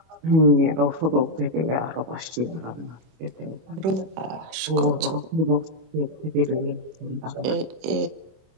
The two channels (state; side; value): late; left; 26 ms